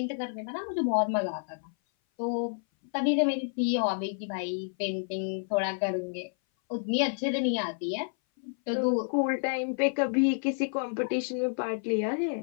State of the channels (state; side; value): silent; right; 57 dB below the other